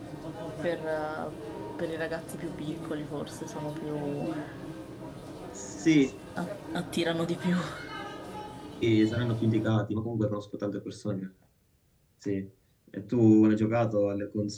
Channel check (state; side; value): identical; both; correlation 1.00